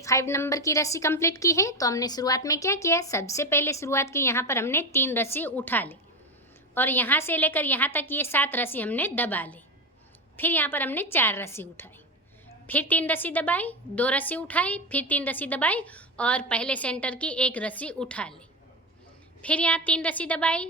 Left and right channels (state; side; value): normal; both; correlation 0.16